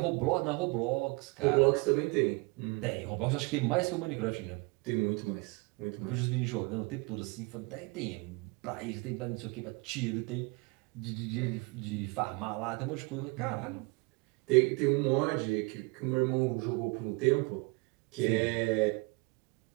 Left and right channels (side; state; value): left; quieter; 27.9 dB